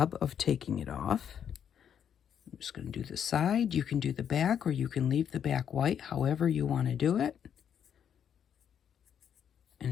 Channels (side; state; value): right; quieter; 8.6 dB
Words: of taking it off. I'm just going to do the side. You can do the back, or you can leave the back white, however you want to do it.